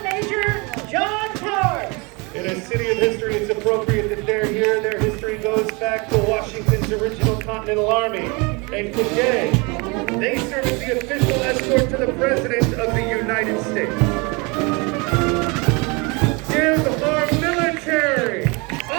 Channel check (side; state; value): left; quieter; 28.7 dB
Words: Major John Towers. In a city of history, it's appropriate that they're here. Their history goes back to Washington's original Continental Army. And today, they serve as the official escort to the President of the United States. Give our military